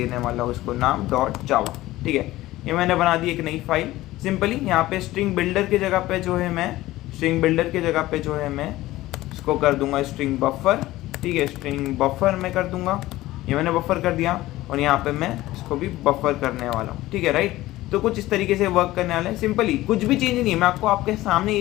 वाला हूँ इसको नाम .java, ठीक है। ये मैंने बना दी एक नई फाइल सिंपली। यहाँ पे स्ट्रिंग बिल्डर की जगह पे जो है मैं स्ट्रिंग बिल्डर की जगह पे जो है मैं इसको कर दूंगा स्ट्रिंग बफर, ठीक है, स्ट्रिंग बफर मैं कर दूंगा, ये मैंने बफर कर दिया और यहाँ पे मैं इसको भी बफर करने वाला हूँ, ठीक है, राइट। तो कुछ इस तरीके से वर्क करने वाला है सिंपली, कुछ भी चेंज नहीं है, मैं आपको आपके सामने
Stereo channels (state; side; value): quieter; right; 16.9 dB